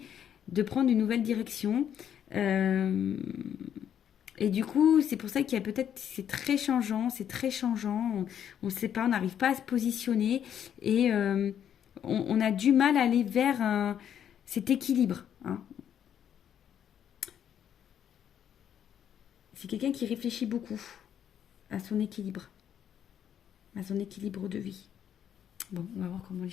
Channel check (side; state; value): right; quieter; 9.4 dB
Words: de prendre une nouvelle direction. Et du coup, c'est pour ça qu'il y a peut-être, c'est très changeant, on ne sait pas, on n'arrive pas à se positionner et on a du mal à aller vers cet équilibre. Hein. C'est quelqu'un qui réfléchit beaucoup à son équilibre de vie. Bon, on va voir comment les